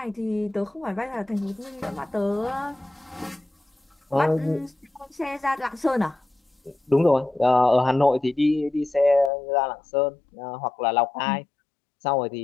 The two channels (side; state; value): right; drops out; at 9.3 s